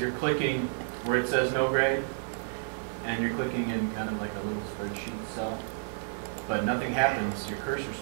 clicking where it says no grade and you're clicking in kind of like a little spreadsheet cell, but nothing happens. Your cursor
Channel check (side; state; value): left; silent; digital silence